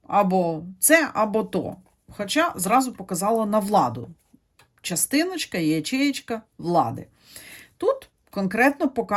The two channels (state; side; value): identical; both; correlation 1.00